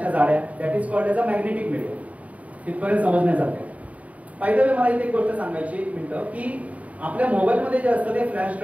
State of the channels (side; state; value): left; late; 0.069 ms